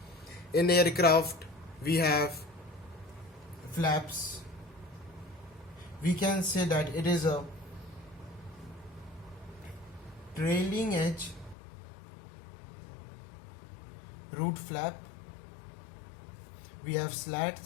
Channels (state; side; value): drops out; right; at 11.6 s